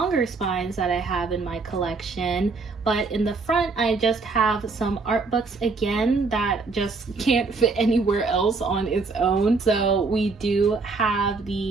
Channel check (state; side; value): quieter; left; 4.1 dB